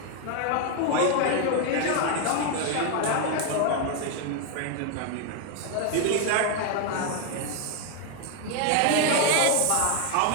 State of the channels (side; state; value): both; different; correlation 0.01